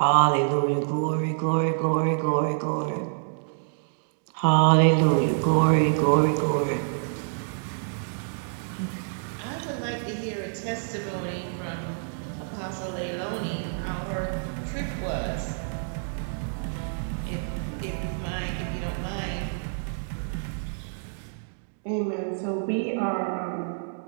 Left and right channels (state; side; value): silent; left; digital silence